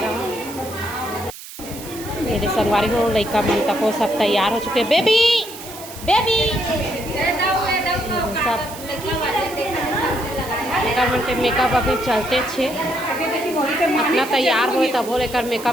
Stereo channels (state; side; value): noise; right; hiss, 14 dB below the sound